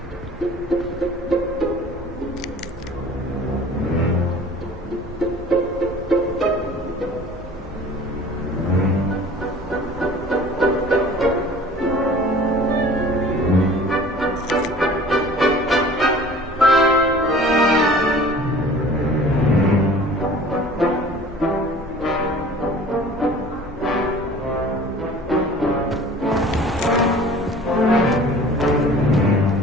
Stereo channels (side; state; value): both; normal; correlation 0.46